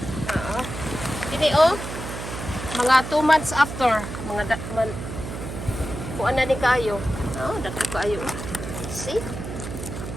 Oo. Dini oh. Mga 2 months after, mga kuan na ni kayo. Oh, dako kayo. See?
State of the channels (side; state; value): right; noise; hum, 8 dB below the sound